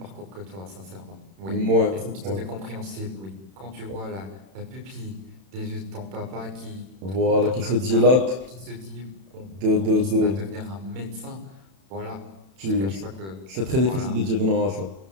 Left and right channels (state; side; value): late; left; 31 ms